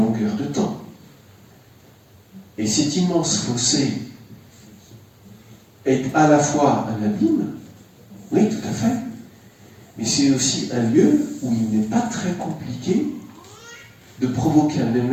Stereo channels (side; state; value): both; identical; correlation 1.00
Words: de temps. Et cet immense fossé est à la fois un abîme, oui, tout à fait, mais c'est aussi un lieu où il n'est pas très compliqué de provoquer un